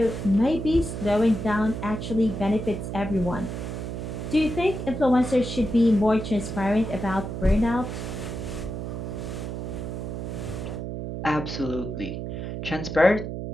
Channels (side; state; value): right; noise; hum, 5 dB below the sound